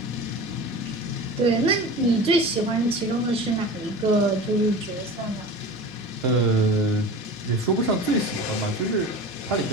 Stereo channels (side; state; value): both; normal; correlation 0.34